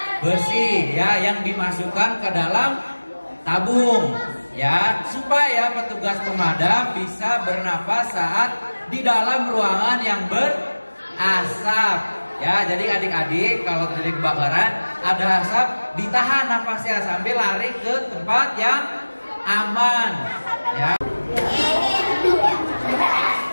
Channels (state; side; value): inverted; both; correlation -1.00